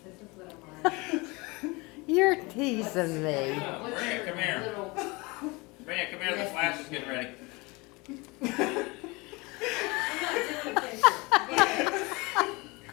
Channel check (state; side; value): quieter; right; 25.4 dB